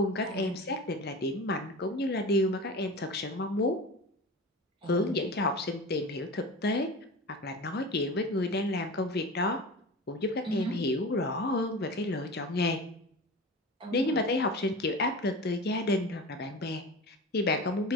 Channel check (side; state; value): both; normal; correlation 0.32